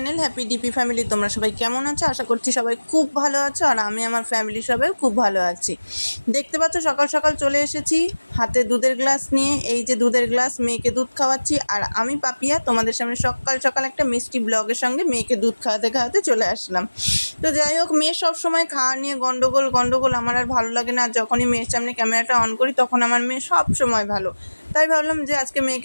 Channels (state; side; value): inverted; both; correlation -1.00